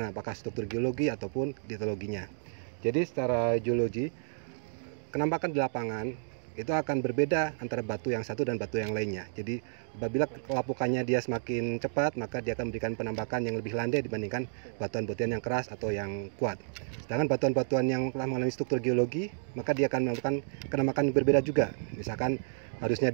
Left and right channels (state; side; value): silent; left; digital silence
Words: apakah struktur geologi ataupun litologinya. Jadi secara geologi, penampakan di lapangan itu akan berbeda antara batu yang satu dan batu yang lainnya. Jadi apabila kelapukannya dia semakin cepat, maka dia akan memberikan penampakan yang lebih landai dibandingkan batuan-batuan yang keras atau yang kuat. Sedangkan batuan-batuan yang telah mengalami struktur geologi, maka dia akan melakukan penampakan yang berbeda juga. Misalkan harusnya